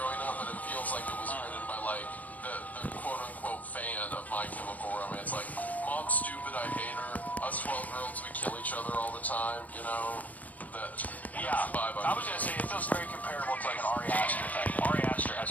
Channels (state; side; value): late; right; 0.077 ms